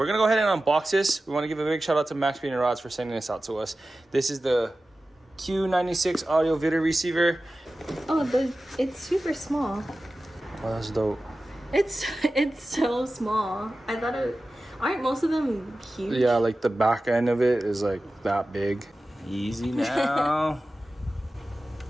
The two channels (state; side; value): normal; both; correlation 0.95